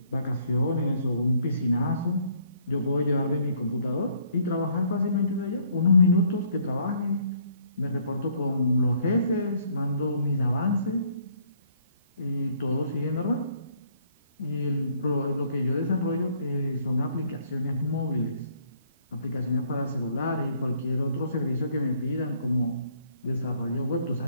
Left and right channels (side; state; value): both; inverted; correlation -0.64